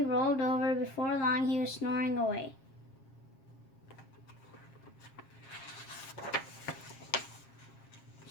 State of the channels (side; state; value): right; late; 7.4 ms